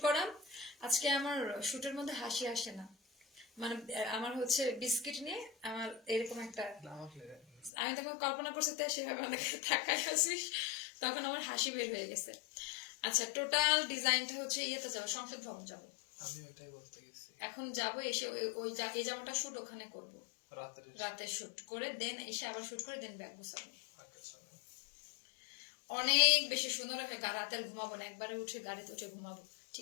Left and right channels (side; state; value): right; drops out; at 7.7 s